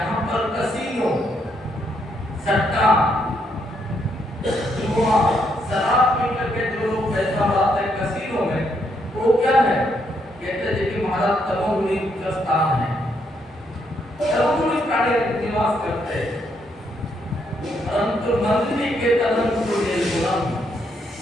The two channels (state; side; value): normal; both; correlation 0.75